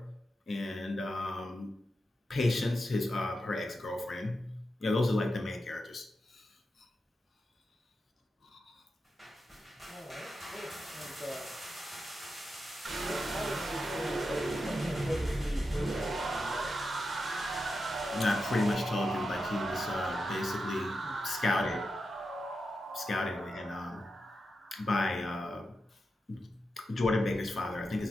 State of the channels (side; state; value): both; normal; correlation 0.88